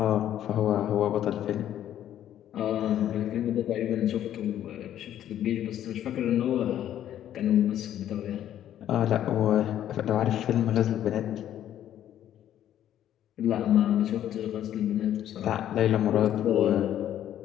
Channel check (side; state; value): right; quieter; 11.3 dB